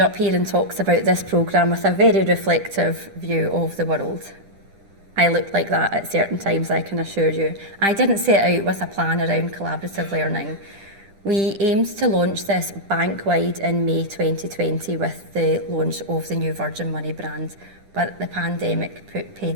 here and talked about this programme with a very reflective view of the world. I looked like that at certain times, I can assure you. I didn't set out with a plan around collaborative learning. We aimed to launch this bank-wide in May 2020 with the launch of the new Virgin Money brand, but the pandemic put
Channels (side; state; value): left; late; 10 ms